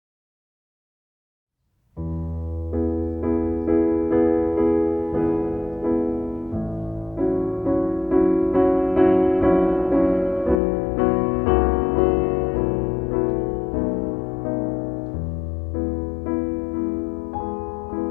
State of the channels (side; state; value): right; drops out; at 10.6 s